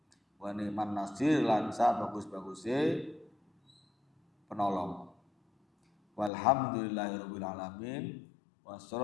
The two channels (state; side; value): drops out; right; at 6.3 s